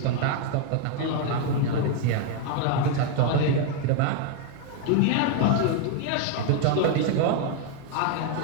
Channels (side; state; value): both; different; correlation 0.01